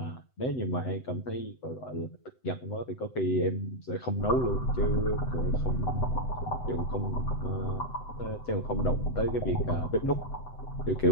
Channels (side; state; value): right; late; 7.9 ms